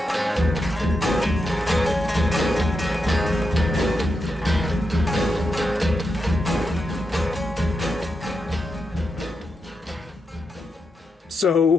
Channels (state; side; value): normal; both; correlation 0.86